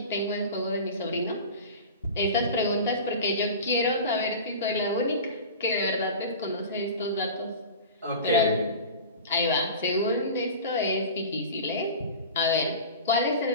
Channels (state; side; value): inverted; both; correlation -0.34